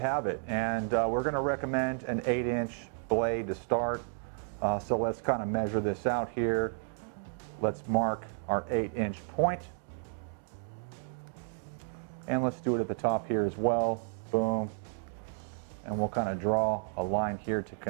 it. And we're going to recommend an 8-inch blade to start. So let's kind of measure this out here. Let's mark our 8-inch point. And let's do it at the top here as well. Boom. And we'll kind of draw a line here to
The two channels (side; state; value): left; silent; 56 dB below the other